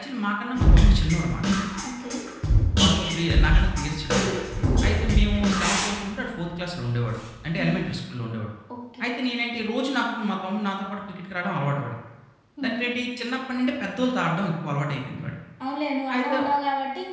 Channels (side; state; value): both; identical; correlation 1.00